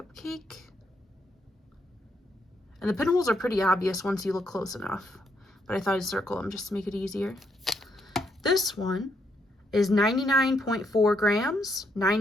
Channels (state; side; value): normal; both; correlation 0.76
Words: And the pinholes are pretty obvious once you look close enough, but I thought I'd circle them just to make it easier. This one is 99.4 grams,